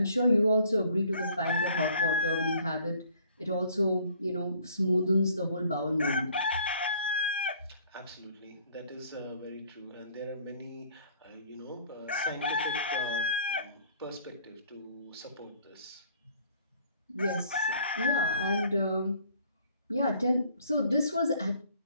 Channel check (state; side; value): inverted; both; correlation -0.58